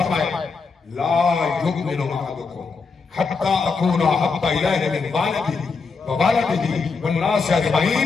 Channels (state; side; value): quieter; right; 4.7 dB